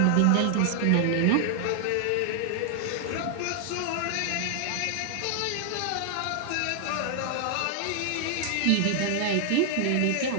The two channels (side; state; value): both; different; correlation 0.00